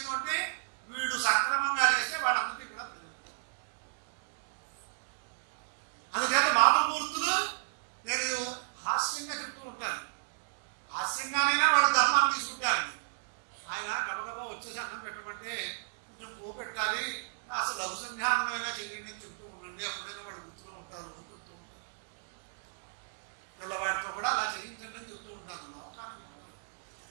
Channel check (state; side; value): silent; left; digital silence